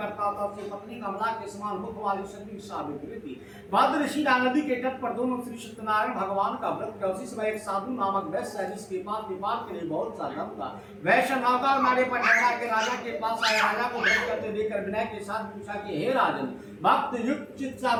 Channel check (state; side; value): identical; both; correlation 1.00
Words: था। उसकी पत्नी कमला के समान मुख वाली शक्ति सावित्री थी। भद्रशिला नदी के तट पर दोनों श्री सत्यनारायण भगवान का व्रत किया। उसी समय एक साधु नामक वैश्य है, जिसके पास व्यापार के लिए बहुत सा धन था। वैश्य नौका मारे पर ठहरा के राजा के पास आया। राजा को व्रत करते देखकर विनय के साथ पूछा कि हे राजन, भक्त युक्त चित्त से